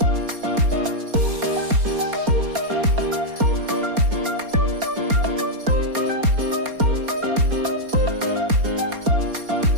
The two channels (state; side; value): late; left; 4.3 ms